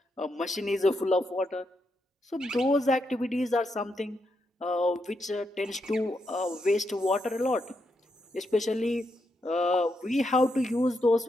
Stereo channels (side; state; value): both; normal; correlation 0.82